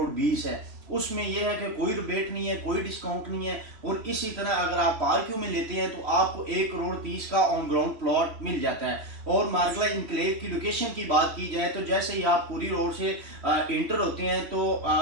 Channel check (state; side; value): late; left; 3.1 ms